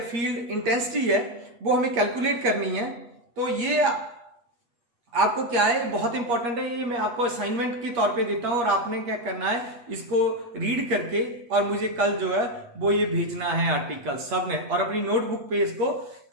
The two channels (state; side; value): late; left; 8.5 ms